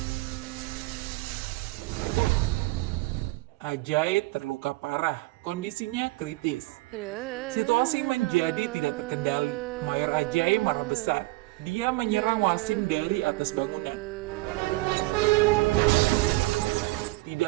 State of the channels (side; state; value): left; quieter; 21.6 dB